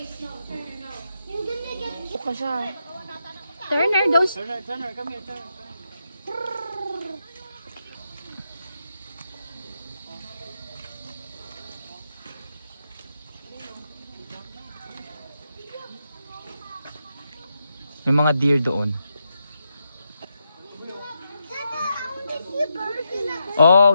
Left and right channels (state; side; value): inverted; both; correlation -0.84